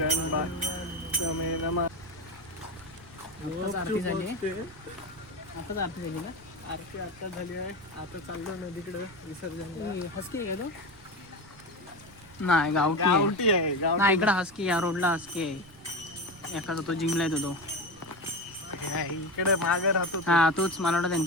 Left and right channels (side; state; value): right; noise; rumble, 22 dB below the sound